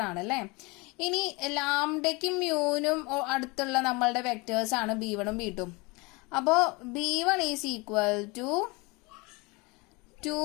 ആണ് അല്ലേ. ഇനി ലാംഡയ്ക്കും മ്യൂനും അടുത്തുള്ള നമ്മളുടെ വെക്ടേഴ്സ് ആണ് b1ഉം b2ഉം. അപ്പോ b1 is equal to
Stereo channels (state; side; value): quieter; right; 26.4 dB